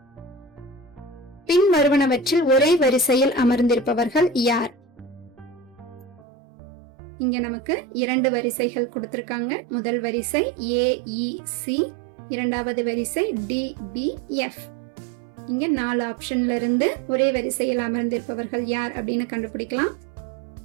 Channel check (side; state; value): left; drops out; at 6.2 s